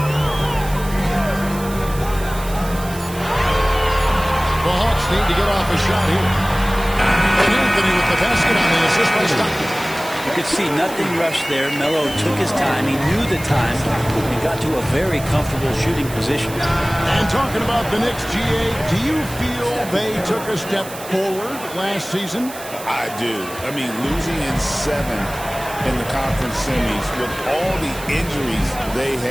Hawks need to get off a shot here. And Anthony with the basket on the assist by Stockton. You could see nothing rushed there. Melo took his time. He knew the time and got to a very comfortable shooting position. And talking about the Knicks, GA, do you feel they took a step forward last season? I do. I mean, losing in 7 in the conference semis with all the injuries they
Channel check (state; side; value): noise; right; hiss, 14 dB below the sound